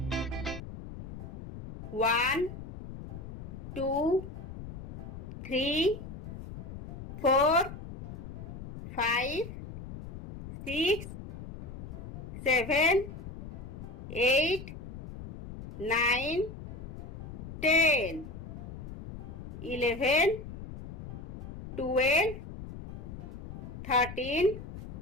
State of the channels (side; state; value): left; noise; rumble, 10 dB below the sound